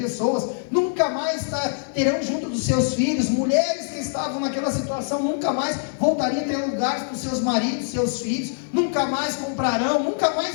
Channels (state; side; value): silent; right; digital silence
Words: nunca mais terão junto dos seus filhos. Mulheres que estavam naquela situação nunca mais voltariam a ter lugares para os seus maridos, seus filhos, nunca mais comprarão, nunca mais